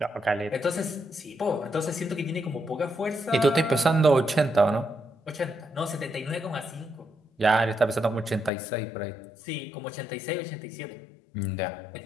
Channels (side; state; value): right; drops out; at 8.5 s